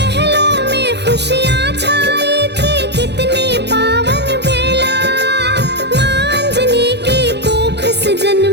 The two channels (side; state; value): left; late; 0.50 ms